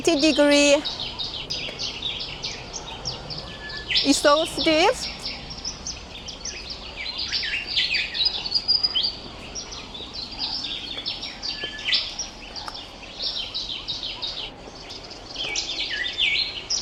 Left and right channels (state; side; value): identical; both; correlation 1.00